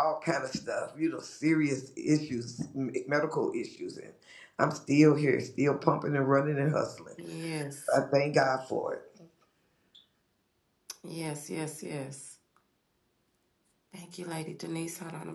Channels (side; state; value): both; identical; correlation 1.00